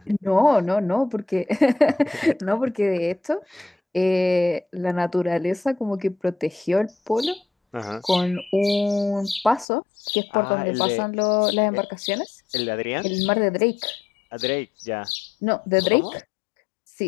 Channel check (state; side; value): drops out; right; at 9.7 s